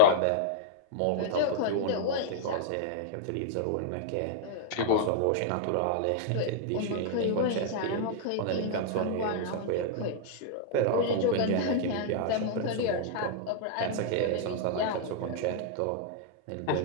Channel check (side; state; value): both; different; correlation -0.01